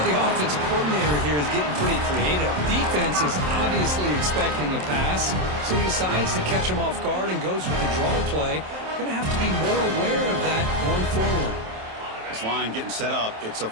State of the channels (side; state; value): left; late; 27 ms